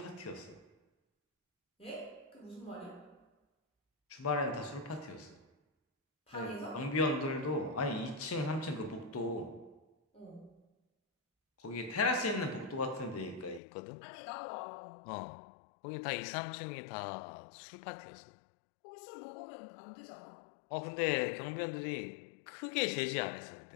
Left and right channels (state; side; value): drops out; right; at 13.6 s